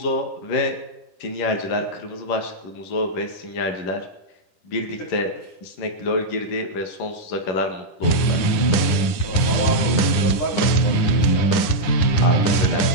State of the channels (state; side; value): late; right; 9.9 ms